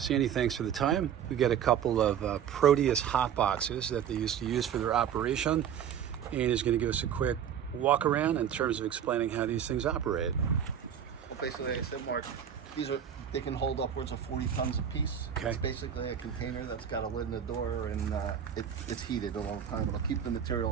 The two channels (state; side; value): quieter; left; 8.8 dB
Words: thanks for the time. We got a couple of Proteus Hotboxes that they used to use for their operation, and he's going to give us a quick walk around in terms of explaining how these things operate. Well, basically, like I said, Mark, they can hold upwards of 40 tons a piece. Okay. It's basically a container that's got a lid in the door, and it's heated all the time. It'll keep the